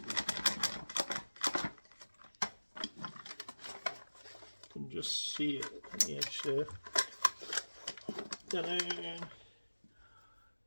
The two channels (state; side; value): inverted; both; correlation -1.00